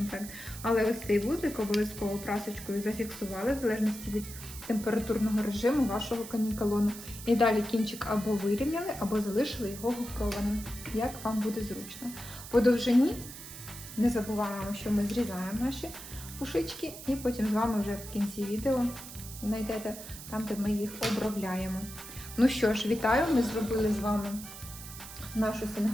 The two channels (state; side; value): noise; right; hiss, 13 dB below the sound